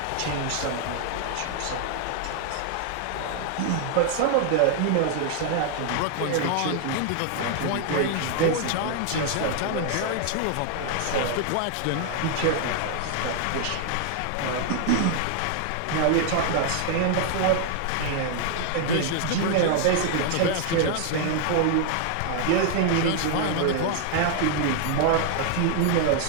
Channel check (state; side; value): different; both; correlation 0.00